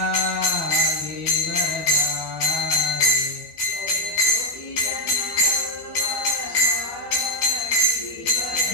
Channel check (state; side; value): late; right; 12 ms